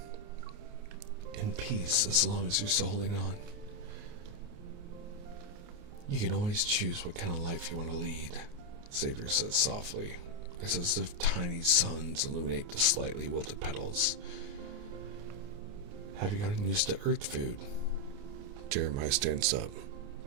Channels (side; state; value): left; late; 29 ms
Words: In peace, as long as you're still holding on. You can always choose what kind of life you want to lead, Xavier says softly. It's as if tiny suns illuminate the slightly wilted petals. Have you gotten used to Earth food? Jeremiah stands up.